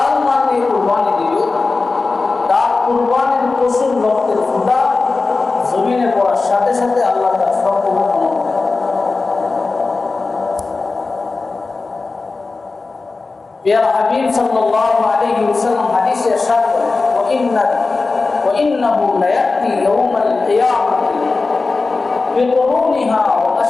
মাল দিয়ে কুরবানি দিবে, তার কুরবানির পশুর রক্তের ফোঁটা জমিনে পড়ার সাথে সাথে আল্লাহ তার সব কবুল করবে। প্রিয় হাবিব সাল্লাল্লাহু আলাইহি ওয়াসাল্লাম হাদিসে ইরশাদ করেন, وإنه ليأتي يوم القيامة بقرونها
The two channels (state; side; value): quieter; right; 3.9 dB